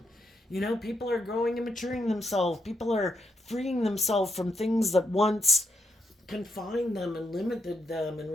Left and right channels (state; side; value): normal; both; correlation 0.81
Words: People are growing and maturing themselves. People are freeing themselves from things that once confined them and limited them and